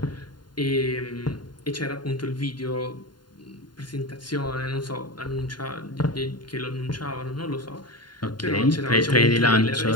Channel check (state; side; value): late; right; 0.71 ms